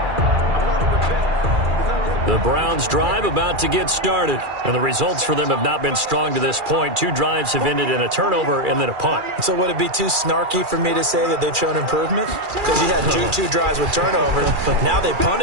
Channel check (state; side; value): late; left; 2.4 ms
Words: The Browns drive about to get started, and the results for them have not been strong to this point. 2 drives have ended in a turnover and then a punt. So would it be too snarky for me to say that they've shown improvement? Because you had two drives with turnovers. Now they